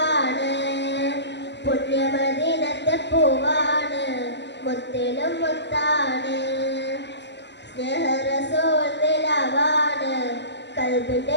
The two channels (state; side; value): late; right; 0.51 ms